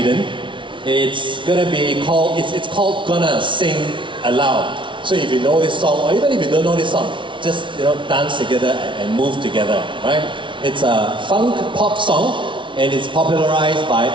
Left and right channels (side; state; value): left; late; 0.24 ms